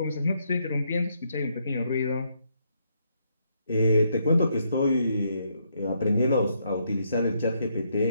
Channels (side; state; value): both; inverted; correlation -0.75